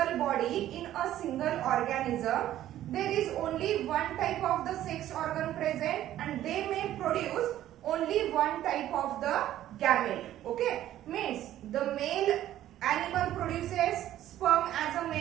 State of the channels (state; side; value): quieter; left; 12.8 dB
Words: body, in a single organism, there is only one type of the sex organ present and they may produce only one type of the gamete. Okay, means the male animal produces sperm as a